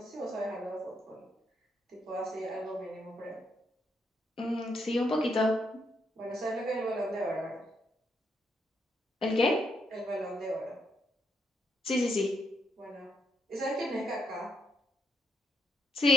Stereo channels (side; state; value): both; normal; correlation 0.76